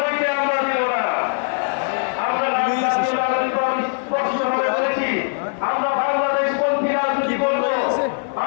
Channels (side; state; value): right; silent; 60 dB below the other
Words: হইতে আমরা দিব না। আমরা স্পষ্টভাবে বলেছি, আমরা বাংলাদেশপন্থী রাজনীতি করব।